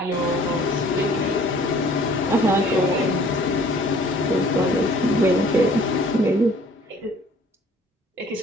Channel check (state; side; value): normal; both; correlation 0.54